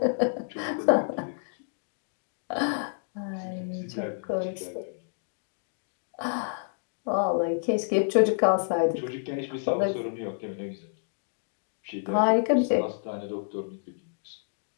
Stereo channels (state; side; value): silent; right; digital silence